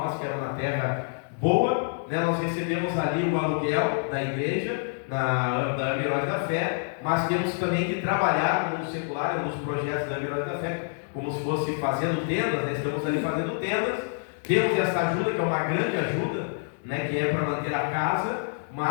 que era uma terra boa, né? Nós recebemos ali o aluguel da igreja, da Heróis da Fé, mas temos também que trabalhar no secular, nos projetos da Heróis da Fé, como se fosse fazendo tendas, né? Estamos ali fazendo tendas, temos essa ajuda, que é uma grande ajuda, né? Que é para manter a casa,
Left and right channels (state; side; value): silent; right; digital silence